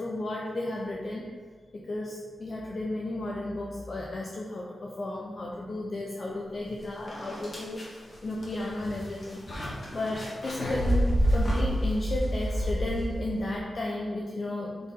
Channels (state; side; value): normal; both; correlation 0.91